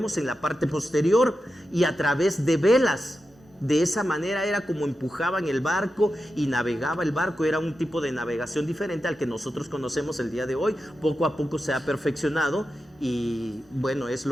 en la parte posterior y a través de velas. De esa manera era como empujaban el barco y navegaba el barco. Era un tipo de navegación diferente al que nosotros conocemos el día de hoy. Poco a poco se ha perfeccionado y bueno, es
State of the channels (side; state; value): both; normal; correlation 0.90